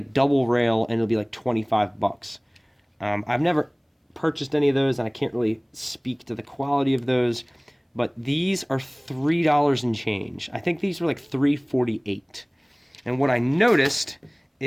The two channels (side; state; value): both; identical; correlation 1.00